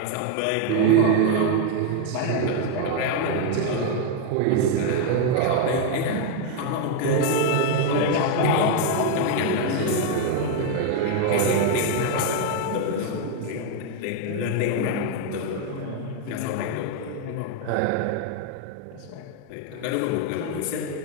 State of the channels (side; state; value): both; different; correlation 0.01